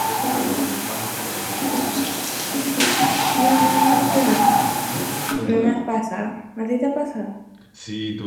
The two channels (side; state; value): both; identical; correlation 1.00